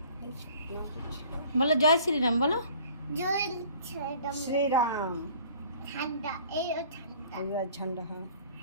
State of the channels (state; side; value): inverted; both; correlation -0.51